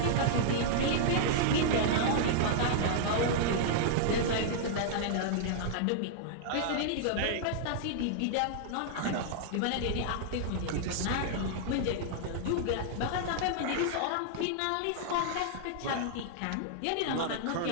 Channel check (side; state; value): both; different; correlation -0.01